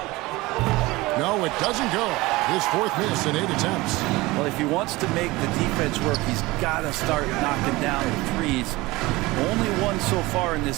No, it doesn't go. His 4th miss in 8 attempts. Well, if he wants to make the defense work, he's got to start knocking down the threes. Only one so far in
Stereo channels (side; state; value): left; quieter; 20.9 dB